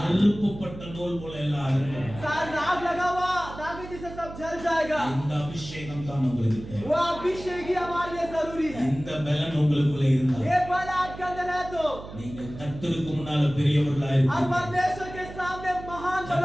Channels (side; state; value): right; noise; hum, 13 dB below the sound